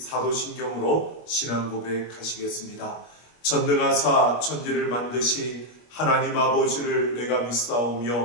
신앙 고백하시겠습니다. 전능하사 천지를 만드신 하나님 아버지를 내가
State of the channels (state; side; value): late; right; 25 ms